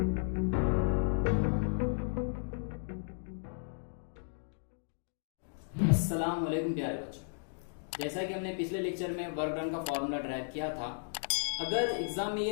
वालेकुम प्यारे बच्चों, जैसा कि हमने पिछले लेक्चर में वर्क डन का फॉर्मूला ड्राइव किया था। अगर एग्जाम में ये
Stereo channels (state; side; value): silent; right; digital silence